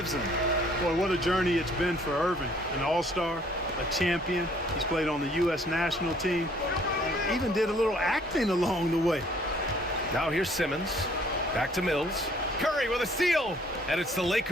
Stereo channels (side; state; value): both; normal; correlation 0.59